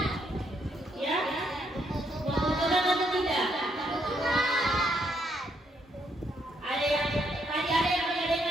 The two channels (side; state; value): both; normal; correlation 0.74